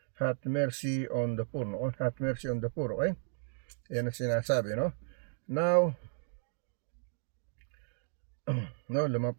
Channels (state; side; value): silent; left; digital silence